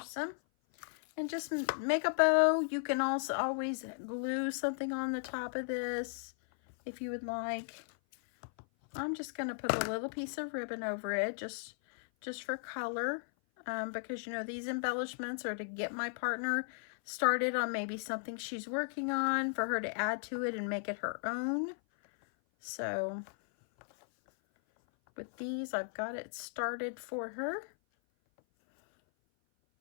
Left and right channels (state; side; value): silent; right; 54 dB below the other